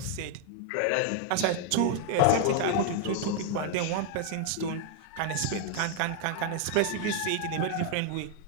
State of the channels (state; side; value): different; both; correlation 0.00